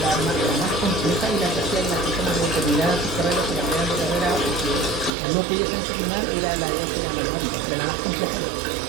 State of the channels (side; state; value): left; drops out; at 5.1 s